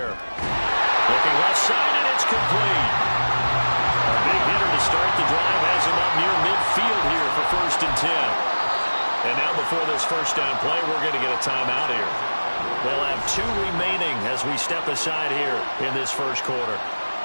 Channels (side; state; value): both; inverted; correlation -1.00